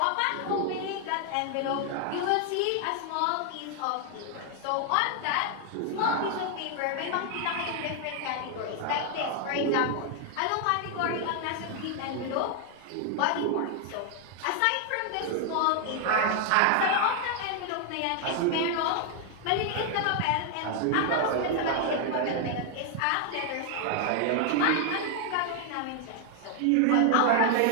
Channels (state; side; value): different; both; correlation 0.00